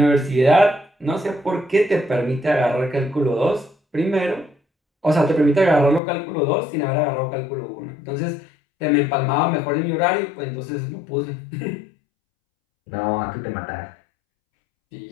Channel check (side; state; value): right; drops out; at 6.0 s